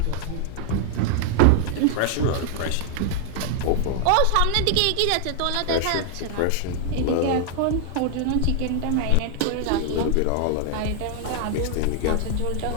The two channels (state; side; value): different; both; correlation 0.00